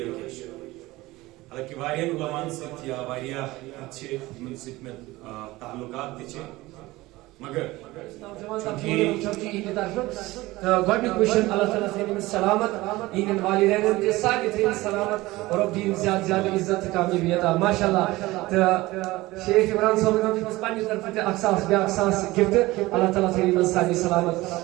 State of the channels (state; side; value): quieter; left; 19.4 dB